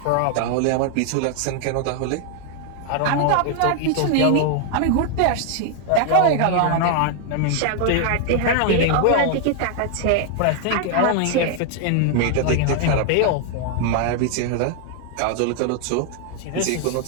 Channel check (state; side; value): different; both; correlation 0.00